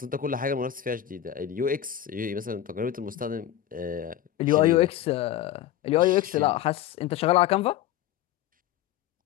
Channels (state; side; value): quieter; right; 11.5 dB